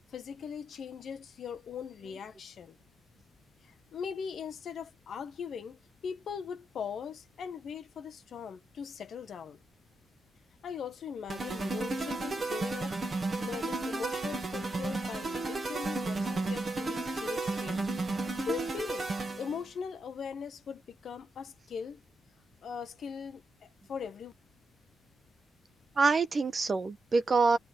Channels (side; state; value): both; normal; correlation 0.85